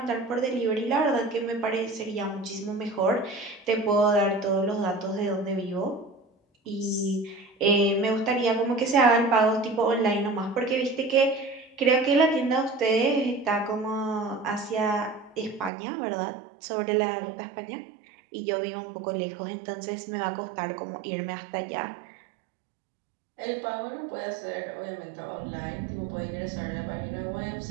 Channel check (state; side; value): drops out; left; at 15.7 s